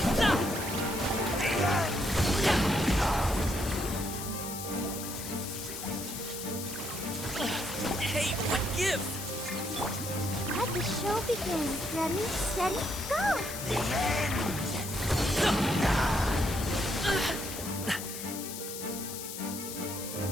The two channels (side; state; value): left; noise; hiss, 8 dB below the sound